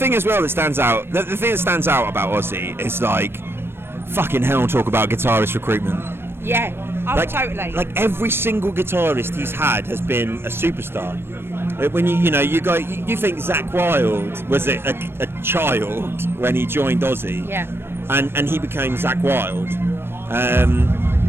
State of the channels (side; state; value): left; late; 0.11 ms